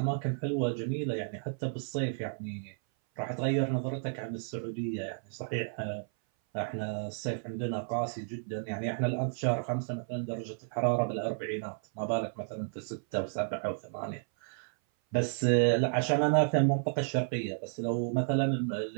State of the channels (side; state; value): left; silent; 56 dB below the other